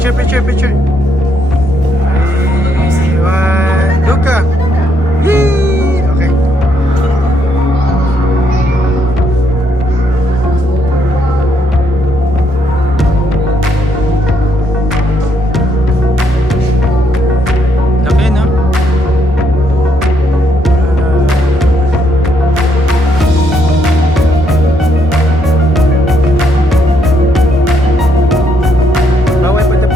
picture, picture. 3, 1, Luka. Yee! Okay. Laki, no? Bawal pa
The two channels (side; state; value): both; normal; correlation 0.74